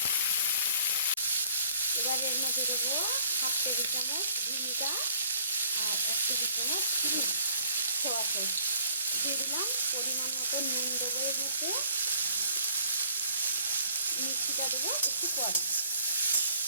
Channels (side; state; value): both; inverted; correlation -0.57